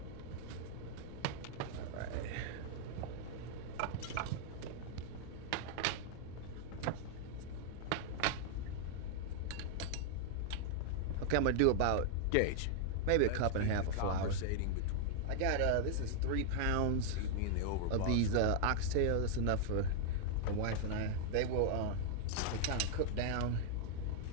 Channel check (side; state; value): both; different; correlation -0.01